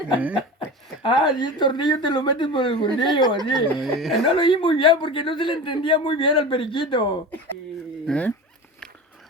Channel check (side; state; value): both; normal; correlation 0.30